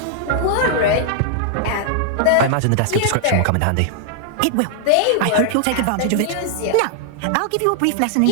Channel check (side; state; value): both; different; correlation -0.01